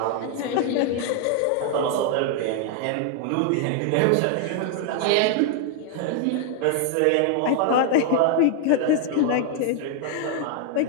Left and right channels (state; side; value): different; both; correlation 0.00